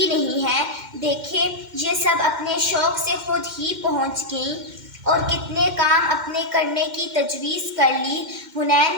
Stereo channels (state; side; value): late; left; 2.1 ms